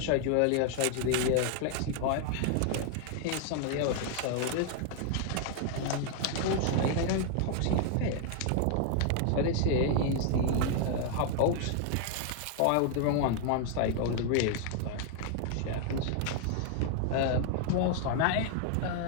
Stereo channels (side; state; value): both; different; correlation 0.00